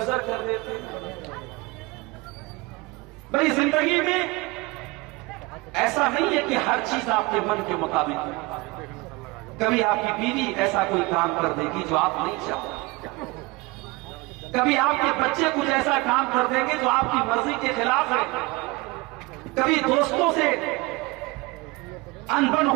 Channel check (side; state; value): left; quieter; 24.0 dB